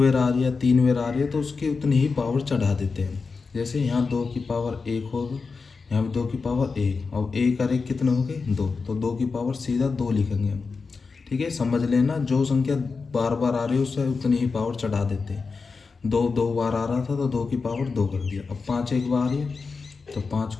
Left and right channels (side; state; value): right; quieter; 4.6 dB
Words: आ रही है, 3 बार आ रही है, तो उसकी उतनी ही पावर चढ़ा देते हैं। जैसे यहाँ 2 की पावर 1 होगा, यहाँ भी 2 की पावर 1, अब 1 और 1 कितने हो गए, 2, तो 2 की पावर सीधा 2 लिखेंगे हम। ठीक है, समझ लेना, जो संख्या बार बार आ रही है उससे उतनी ही पावर चढ़ा देते हैं। 2 2 बार आ रहा था तो 2 की पावर 2 कर दिया। अब 5 एक बार आ रही है तो 5